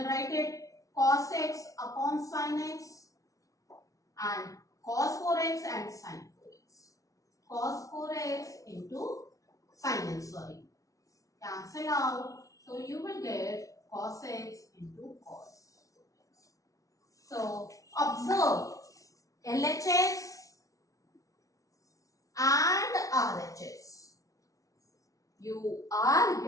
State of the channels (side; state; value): right; late; 0.17 ms